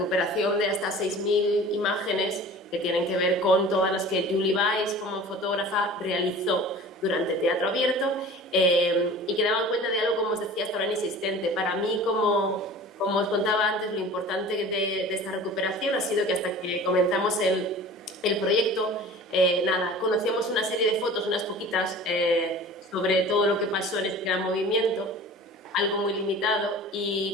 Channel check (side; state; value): both; normal; correlation 0.41